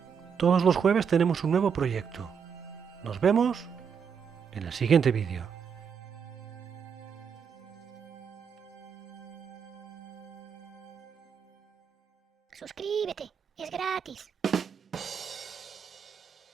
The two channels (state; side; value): quieter; left; 6.8 dB